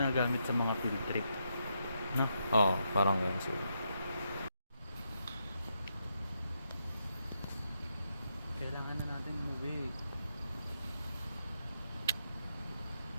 sa mga field trip. No? Oo, parang yan siguro. Kailangan na natin umuwi.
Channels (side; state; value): both; inverted; correlation -0.81